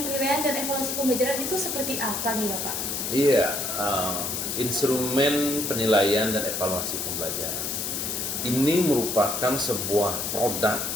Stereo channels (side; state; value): left; noise; hiss, 2 dB below the sound